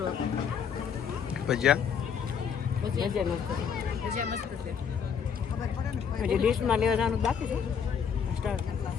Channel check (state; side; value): quieter; right; 7.1 dB